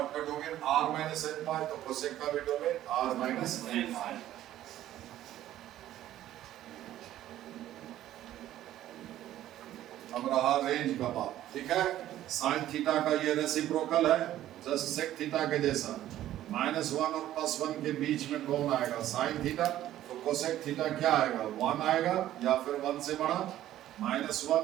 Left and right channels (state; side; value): quieter; left; 13.1 dB